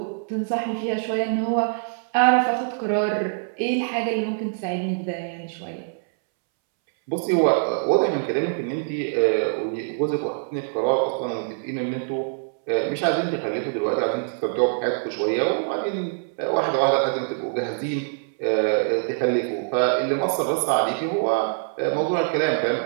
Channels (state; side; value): silent; left; 62 dB below the other